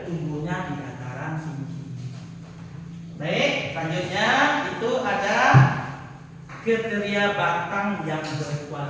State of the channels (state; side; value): identical; both; correlation 1.00